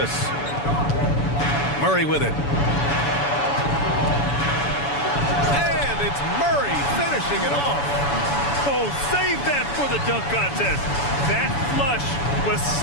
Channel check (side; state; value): right; late; 7.0 ms